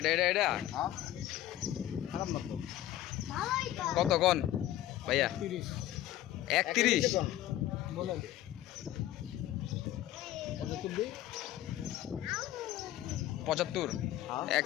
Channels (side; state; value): right; quieter; 13.6 dB